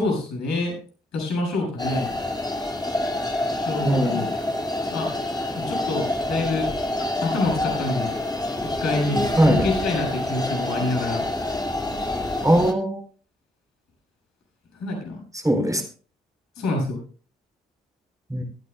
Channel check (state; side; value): normal; both; correlation 0.77